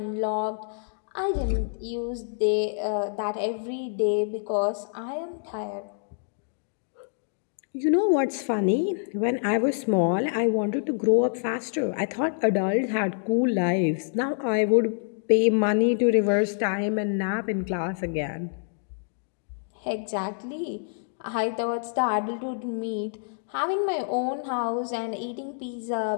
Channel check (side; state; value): right; silent; digital silence